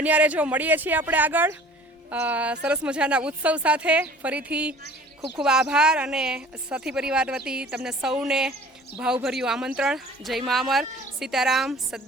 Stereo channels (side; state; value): both; normal; correlation 0.48